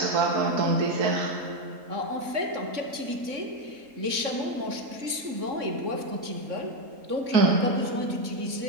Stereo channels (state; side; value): late; left; 3.6 ms